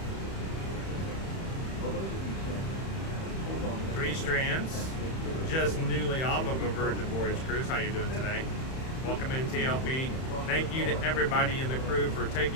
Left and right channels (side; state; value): right; late; 31 ms